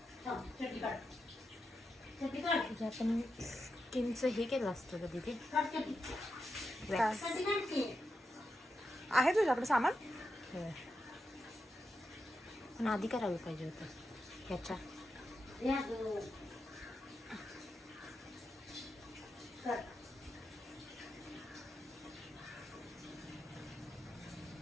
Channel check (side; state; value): both; normal; correlation 0.87